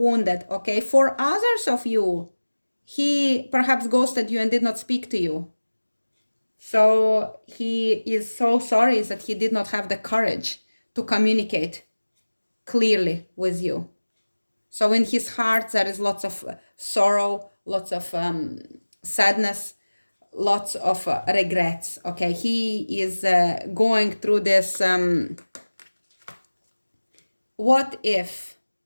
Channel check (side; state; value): both; inverted; correlation -1.00